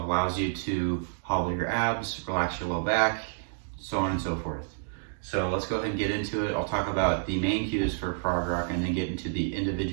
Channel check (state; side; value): silent; left; digital silence